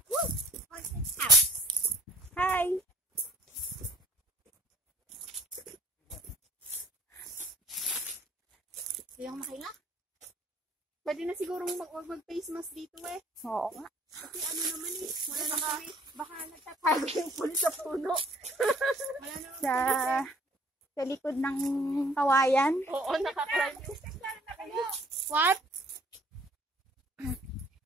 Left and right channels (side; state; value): both; normal; correlation 0.55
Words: Hi! Yung makila. Pwede na sigurong mag-face mask dito eh. Oo nga. Kasi ano naman eh. Wala na baka nagtatago yung pulis sa puno. Wala na. Sa likod ng kawayan. Oo, nakakrime. What?